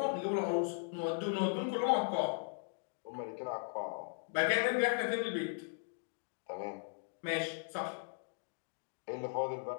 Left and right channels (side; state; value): right; silent; digital silence